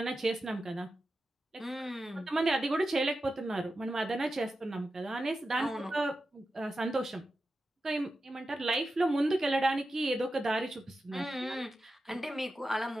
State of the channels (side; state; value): both; normal; correlation 0.91